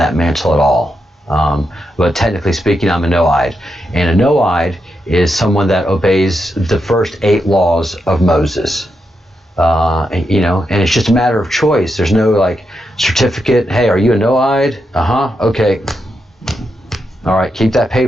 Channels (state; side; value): normal; both; correlation 0.84